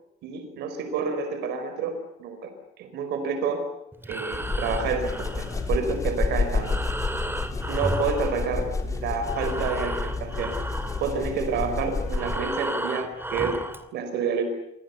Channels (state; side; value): normal; both; correlation 0.45